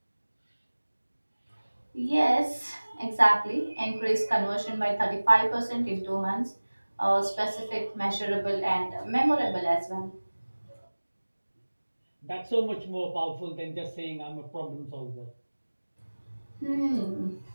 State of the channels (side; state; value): both; inverted; correlation -1.00